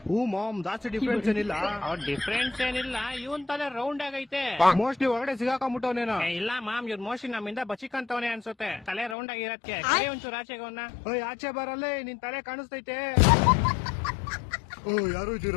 ಹೂ ಮಾಮ್, ಜಾಸ್ತಿ ಡಿಫ್ರೆನ್ಸ್ ಏನಿಲ್ಲ. ಅವ್ರ ಡಿಫ್ರೆನ್ಸ್ ಏನಿಲ್ಲ, ಇವನ್ ತಲೆ ರೌಂಡ್ ಆಗೈತೆ. ಮೋಸ್ಟ್ಲಿ ಒಳಗಡೆ ಸಿಗಾಕೊಂಡ್ಬಿಟ್ಟವನೇನೋ. ಇಲ್ಲ ಮಾಮ್, ಇವ್ರ ಮೋಸ್ಟ್ಲಿ ನಮ್ಮಿಂದ ಬಚಿಕಂತವನೇ ಅನ್ಸುತ್ತೆ. ತಲೆ ರೌಂಡ್ ಆಗಿರತ್ಕೆ ಒಂಚೂರು ಆಚೆಗೆ ಅವನ್ನ. ಓಯ್ ಆಚೆ ಬರಲ್ಲೇ, ನಿನ್ ತಲೆ ಕಾಣಿಸ್ತೈತೆ. ಓ ಯಾರು ಇದ್ದೀರ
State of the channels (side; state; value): right; drops out; at 9.2 s